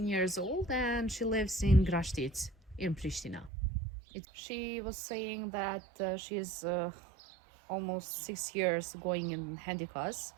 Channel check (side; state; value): left; drops out; at 3.5 s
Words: years old and she lives in Grashtic in Pristina. She was saying that she is almost 6 years going in Handikos.